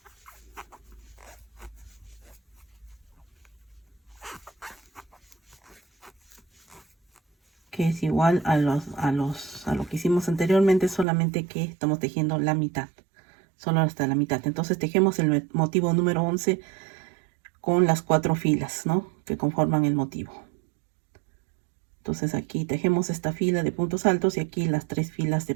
Que es igual a lo que hicimos anteriormente, solamente que estamos tejiendo la mitad. Solo hasta la mitad. Entonces tejemos el motivo número 11 con las 4 filas, ¿no?, que conforman el motivo. Entonces aquí tejemos esta fila de puntos altos y aquí las 3 filas de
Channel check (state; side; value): drops out; left; at 11.1 s